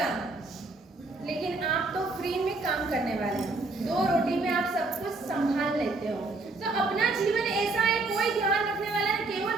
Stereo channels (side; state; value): left; quieter; 3.4 dB